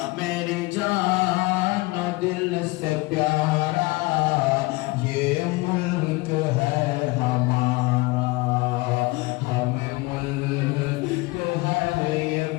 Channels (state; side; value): quieter; right; 23.2 dB